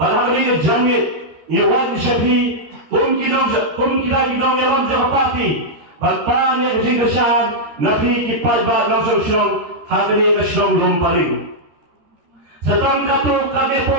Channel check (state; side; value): late; left; 13 ms